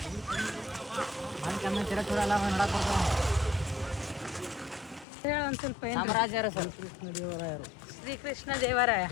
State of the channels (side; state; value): right; drops out; at 5.1 s